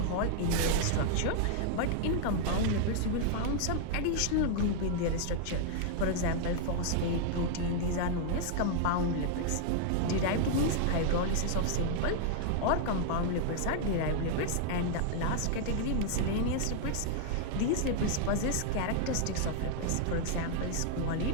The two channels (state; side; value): different; both; correlation 0.00